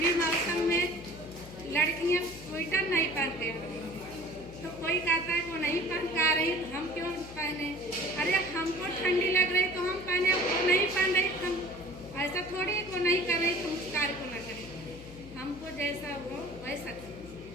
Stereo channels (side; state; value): left; noise; hum, 15 dB below the sound